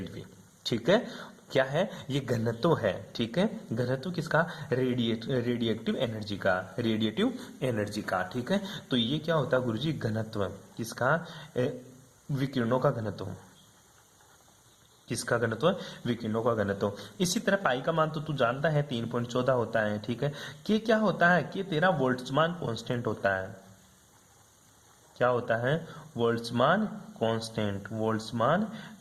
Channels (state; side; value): identical; both; correlation 1.00